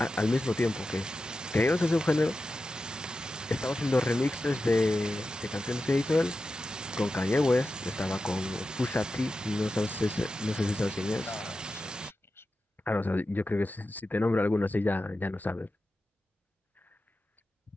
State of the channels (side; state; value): both; normal; correlation 0.92